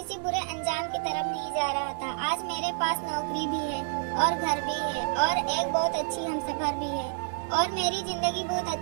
बुरे अंजाम की तरफ नहीं जा रहा था। आज मेरे पास नौकरी भी है और घर भी है और एक बहुत अच्छी हमसफर भी है और मेरी जिंदगी बहुत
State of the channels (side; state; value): left; silent; 55 dB below the other